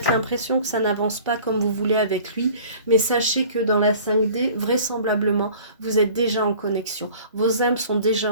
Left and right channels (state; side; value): inverted; both; correlation -0.47